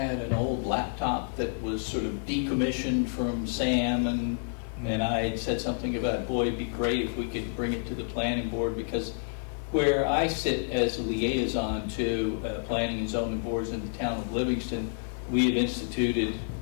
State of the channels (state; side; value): silent; right; digital silence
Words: an old laptop that was sort of decommissioned from Sam, and I had said something about, boy, it'd be great if we could bring it to the planning board, because where I sit as a liaison to planning and zoning boards in the town of Livingston, we have instituted,